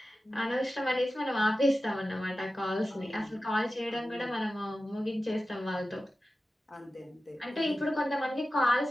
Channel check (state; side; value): normal; both; correlation 0.94